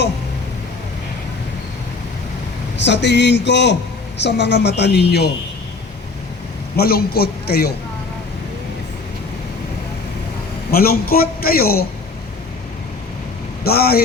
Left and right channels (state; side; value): quieter; right; 4.1 dB